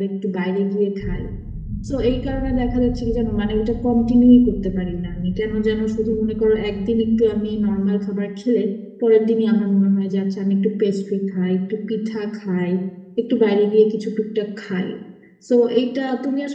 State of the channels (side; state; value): both; identical; correlation 1.00